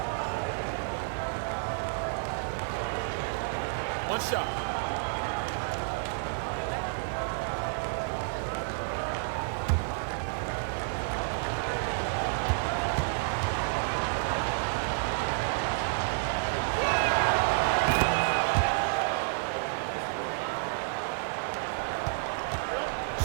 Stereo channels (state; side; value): silent; left; digital silence